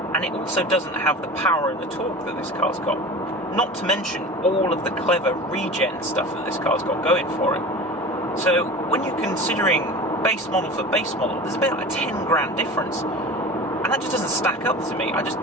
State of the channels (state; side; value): normal; both; correlation 0.35